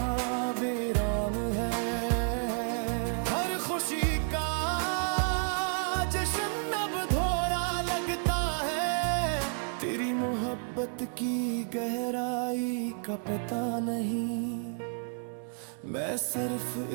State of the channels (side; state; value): left; silent; 57 dB below the other